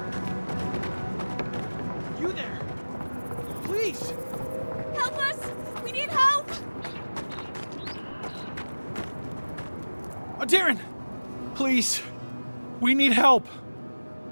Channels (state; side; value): inverted; both; correlation -1.00